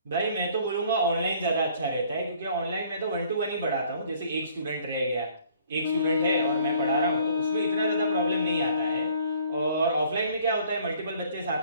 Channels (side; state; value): both; inverted; correlation -0.58